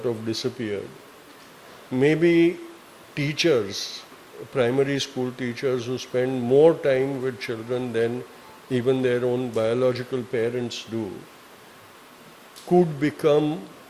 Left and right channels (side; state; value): both; identical; correlation 1.00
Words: of disappeared. Maybe teachers, primary school teachers who spend more time with children than even their own biological parents do, could become